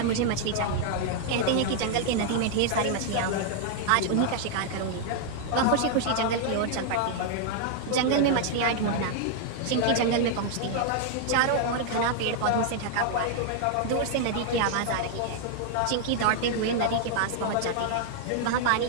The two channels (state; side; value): different; both; correlation 0.00